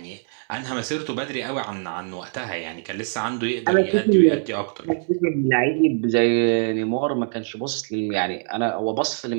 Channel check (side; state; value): left; silent; 63 dB below the other